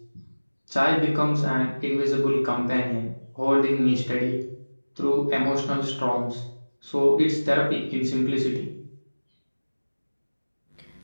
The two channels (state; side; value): inverted; both; correlation -1.00